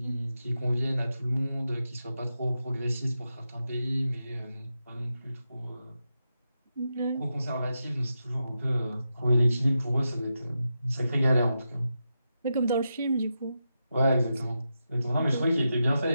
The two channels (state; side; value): inverted; both; correlation -0.88